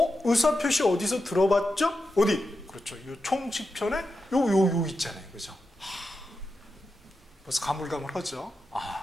의사표시 어디서 들어봤죠? 어디? 그렇죠. 이 총칙편에 요 있잖아요. 그죠? 벌써 가물가물하죠?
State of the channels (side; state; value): both; normal; correlation 0.89